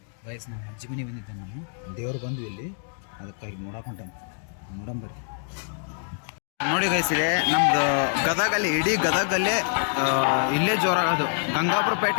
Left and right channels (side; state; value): right; silent; digital silence